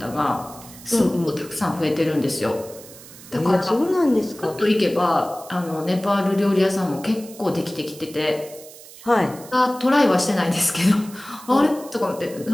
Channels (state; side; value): noise; right; hiss, 18 dB below the sound